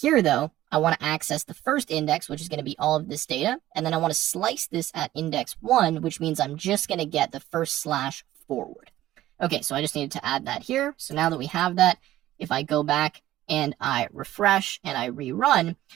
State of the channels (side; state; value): left; quieter; 14.5 dB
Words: though, I want to access the first index, which is going to be all of this data, and then I want to slice this at index 1, which means I'm just going to get the first slash forward. Okay, so I just needed to add that here. So now that we have that, if I go back and I refresh and I rerun,